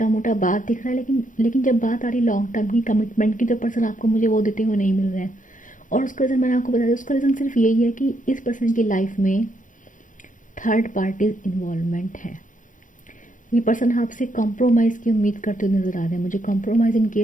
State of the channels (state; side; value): late; right; 0.38 ms